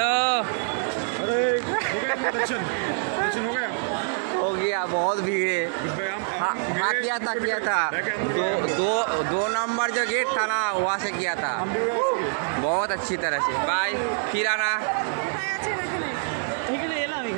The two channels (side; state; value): left; silent; 60 dB below the other